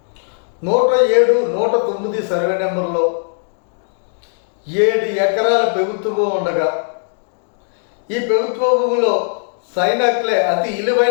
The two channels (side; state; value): right; silent; digital silence